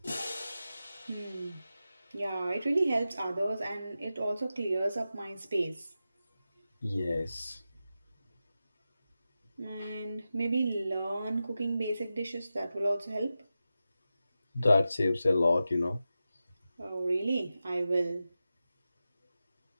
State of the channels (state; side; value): inverted; both; correlation -0.92